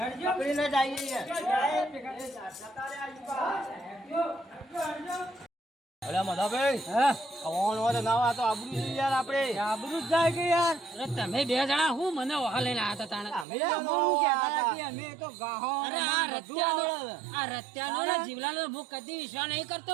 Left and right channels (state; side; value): drops out; left; at 13.5 s